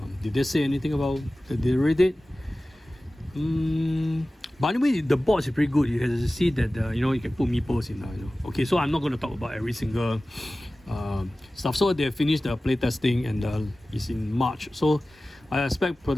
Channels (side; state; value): both; normal; correlation 0.97